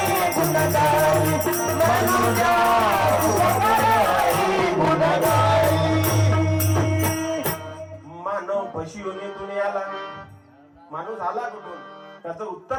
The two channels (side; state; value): both; identical; correlation 1.00